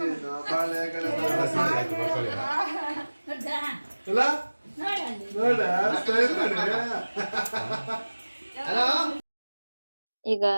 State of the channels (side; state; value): both; inverted; correlation -1.00